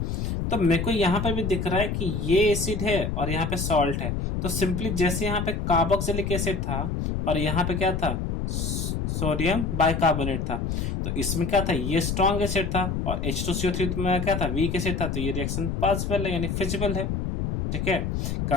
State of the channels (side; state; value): left; noise; rumble, 1 dB below the sound